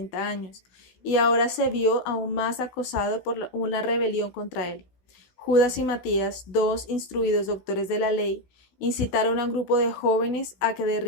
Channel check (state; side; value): late; right; 16 ms